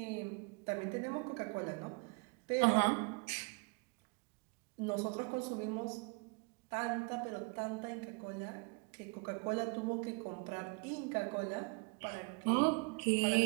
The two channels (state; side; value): quieter; left; 30.5 dB